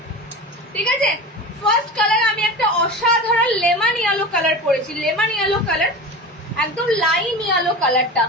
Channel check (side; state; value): both; normal; correlation 0.30